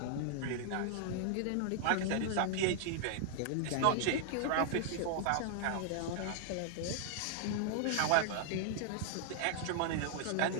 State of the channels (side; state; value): both; different; correlation -0.01